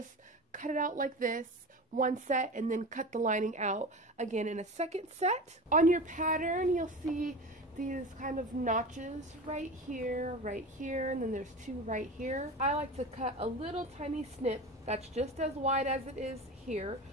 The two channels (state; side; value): normal; both; correlation 0.30